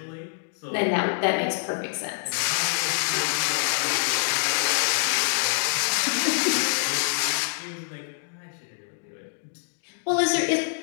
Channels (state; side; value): silent; right; digital silence